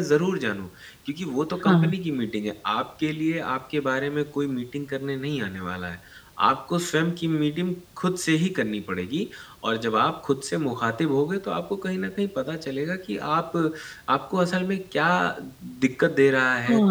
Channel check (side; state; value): both; identical; correlation 1.00